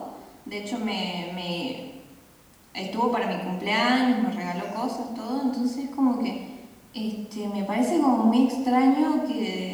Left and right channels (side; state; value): both; identical; correlation 1.00